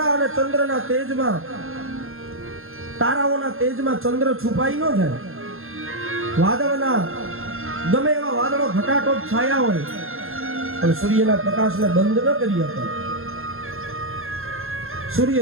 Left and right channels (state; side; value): late; left; 0.61 ms